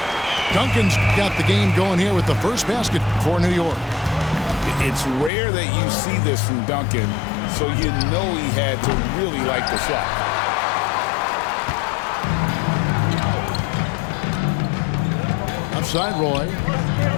Duncan's got the game going here with the first basket for New York. It's rare that you see this from Duncan, so you know he had to really like the shot. Upside Roy.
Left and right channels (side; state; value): right; drops out; at 5.3 s